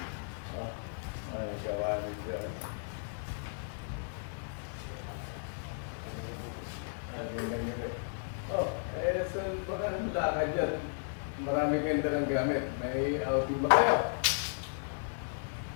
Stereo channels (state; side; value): silent; right; 55 dB below the other